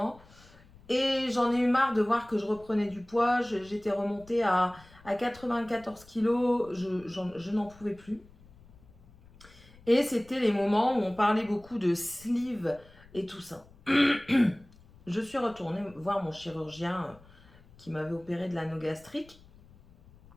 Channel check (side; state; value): left; noise; rumble, 24 dB below the sound